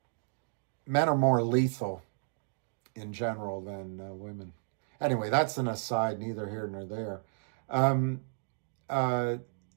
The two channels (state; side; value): silent; left; digital silence